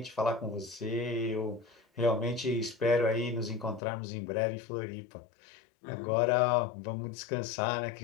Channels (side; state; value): right; drops out; at 3.8 s